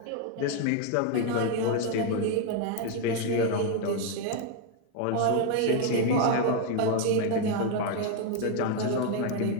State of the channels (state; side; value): different; both; correlation 0.01